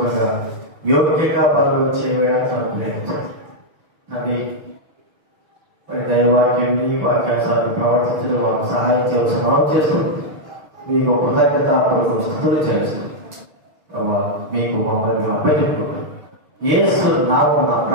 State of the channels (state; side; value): late; left; 6.5 ms